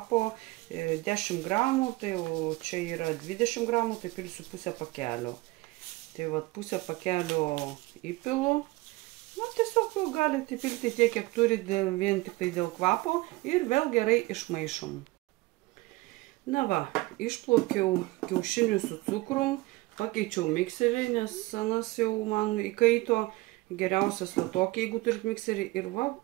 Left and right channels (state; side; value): quieter; left; 21.2 dB